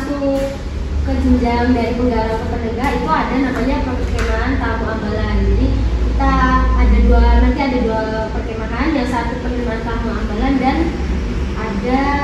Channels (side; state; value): both; identical; correlation 1.00